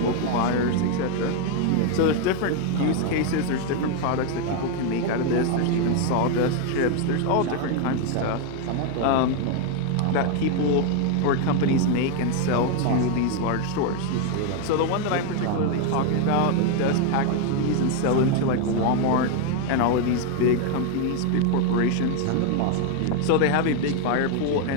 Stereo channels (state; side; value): different; both; correlation 0.01